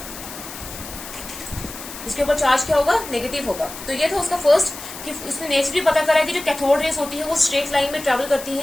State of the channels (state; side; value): noise; left; hiss, 12 dB below the sound